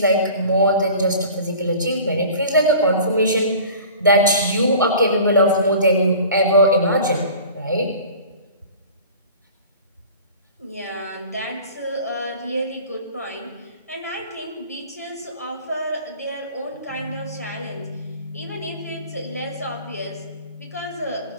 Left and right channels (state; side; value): inverted; both; correlation -0.43